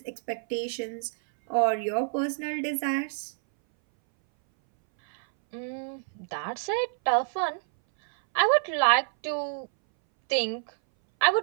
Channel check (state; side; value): silent; left; 60 dB below the other